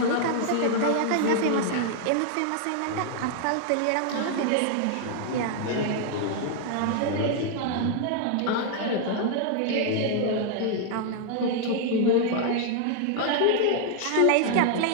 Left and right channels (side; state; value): both; different; correlation 0.00